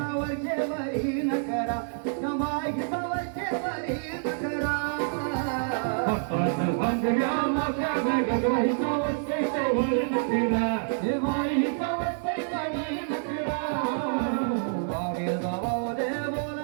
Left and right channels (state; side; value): silent; left; digital silence